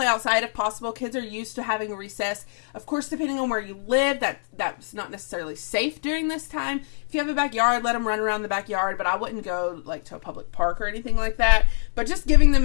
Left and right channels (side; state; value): right; silent; 62 dB below the other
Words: outside if possible. Kids are used to having a recess. Of course, depending on where you live, that's not necessarily safe during this time. If you have a backyard, let them run around the backyard, but I wouldn't go like to a public park or anything like that. But just giving them